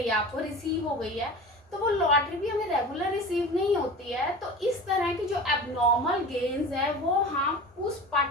है, आपको रिसीव हो गई है, तो वो लॉटरी भी हमें रेगुलर रिसीव नहीं होती है. तो इस तरह की जो एबनॉर्मल गेन्स है वो हम उस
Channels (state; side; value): normal; both; correlation 0.35